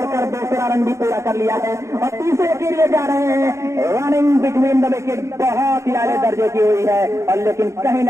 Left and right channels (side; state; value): left; late; 0.14 ms